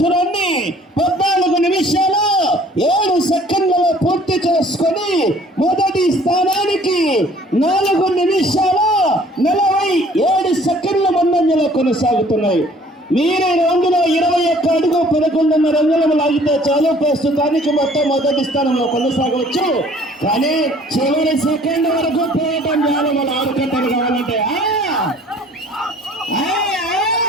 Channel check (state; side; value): normal; both; correlation 0.55